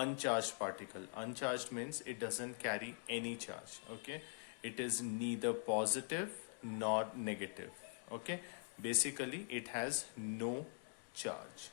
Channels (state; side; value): silent; right; digital silence